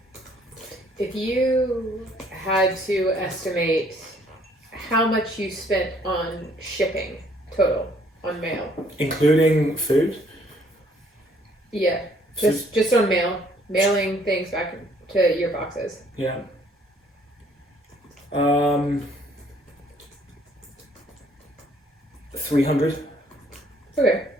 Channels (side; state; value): both; normal; correlation 0.62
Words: If you had to estimate how much you spent on shipping total on mail, including food? Yeah, just on mailing things back to your boxes. Yeah. 300. Okay.